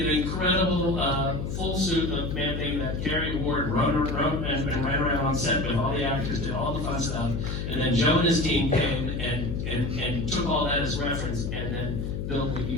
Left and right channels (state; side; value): noise; left; hum, 3 dB below the sound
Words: an incredible full suit of Man-Thing that Kerry Ward wrote and ran around on set with all the actors, did all the fun stuff. And then Joe and his team came and took all that as reference and then built what